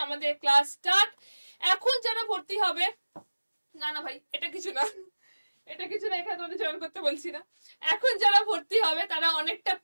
আমাদের ক্লাস স্টার্ট। এখন যারা ভর্তি হবে, না ভাই এটা কিছু না, এটা কিছু না, এখানে তোমাদের জয়েন করতে বলছি না। এখন যারা ভর্তি হবে তারা অনেকটা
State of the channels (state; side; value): inverted; both; correlation -1.00